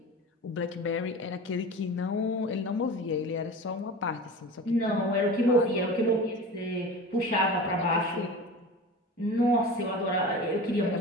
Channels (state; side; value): normal; both; correlation 0.34